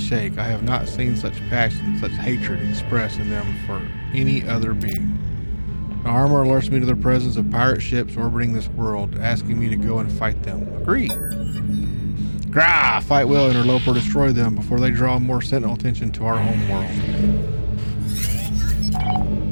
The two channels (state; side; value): inverted; both; correlation -1.00